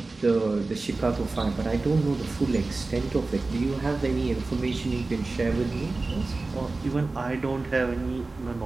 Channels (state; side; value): quieter; left; 3.5 dB